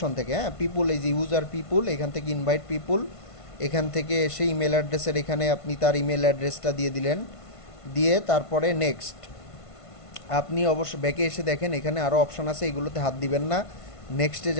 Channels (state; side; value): late; right; 1.5 ms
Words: থেকে, হ্যাঁ পিপুল, এই যে ইউজার পিপুল, এখান থেকে ইনভাইট পিপুল, এখান থেকে এসে ইমেল অ্যাড্রেসের এখানে আপনি তার ইমেল অ্যাড্রেসটা দিয়ে দিলেন। দিয়ে তারপরে নেক্সট, আপনি অবশ্য ব্যাকে এসে দেখেন এখানে আরও অপশন আছে, এগুলোতে হাত দিবেন না, নেক্সটে